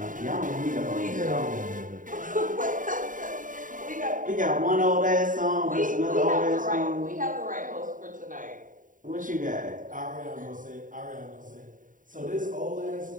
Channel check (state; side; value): late; left; 0.38 ms